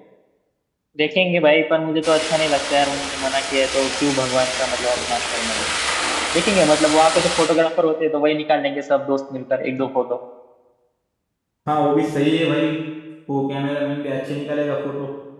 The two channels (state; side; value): identical; both; correlation 1.00